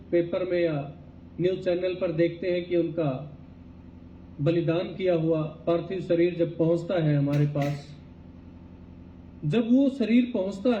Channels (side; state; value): both; identical; correlation 1.00